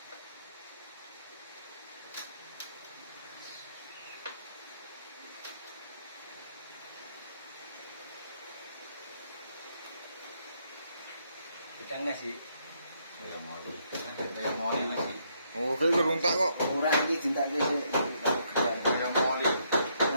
Ikan nasi. Ya mau. Ya mau ini sih. Oh, oke, kurang tak kok. Murah ini cinta gue. Ya mau ini.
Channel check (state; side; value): inverted; both; correlation -0.73